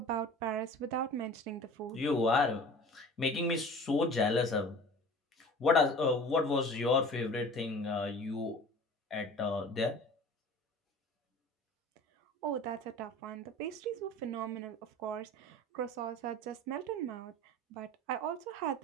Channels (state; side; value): normal; both; correlation 0.41